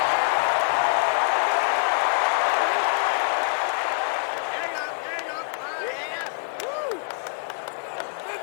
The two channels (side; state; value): right; silent; digital silence